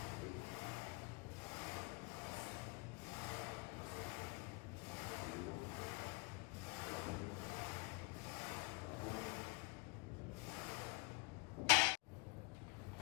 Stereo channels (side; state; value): right; quieter; 28.8 dB